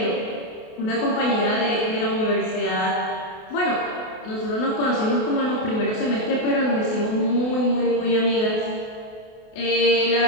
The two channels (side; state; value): right; late; 28 ms